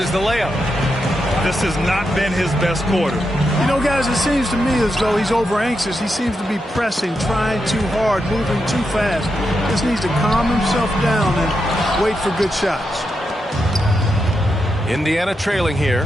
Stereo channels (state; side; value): normal; both; correlation 0.85